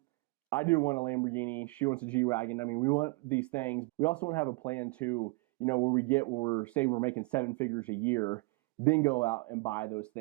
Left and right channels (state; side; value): quieter; left; 26.4 dB